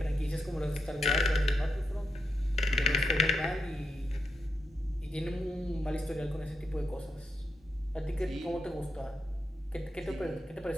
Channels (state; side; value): normal; both; correlation 0.82